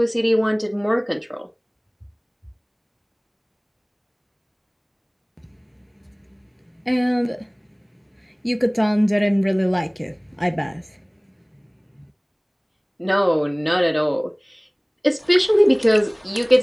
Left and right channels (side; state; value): both; identical; correlation 1.00